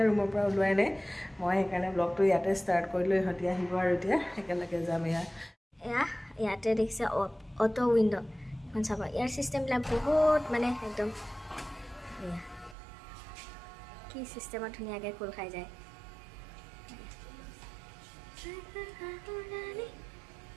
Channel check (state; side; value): drops out; left; at 12.8 s